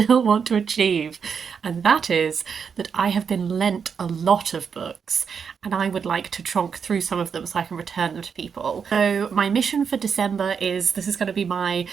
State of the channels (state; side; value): quieter; left; 6.5 dB